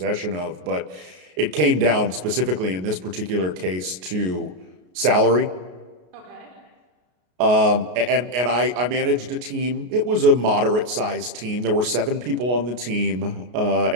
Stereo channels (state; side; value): late; left; 33 ms